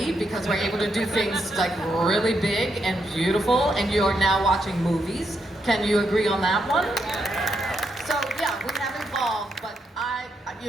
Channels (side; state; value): both; normal; correlation 0.80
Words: because we're able to do things like really big and beautiful, and you're now watching movies. Can you agree on that one? So yeah, we have evolved, but